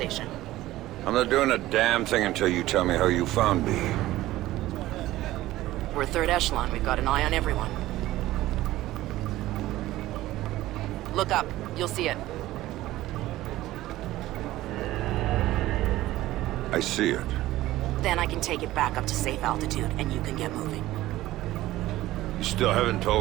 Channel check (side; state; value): left; quieter; 16.1 dB